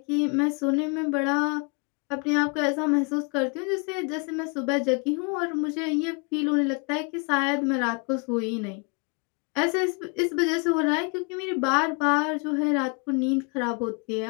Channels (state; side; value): quieter; right; 33.9 dB